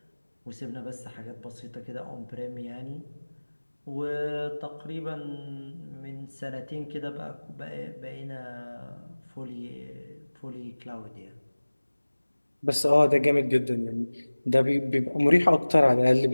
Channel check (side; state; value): both; inverted; correlation -1.00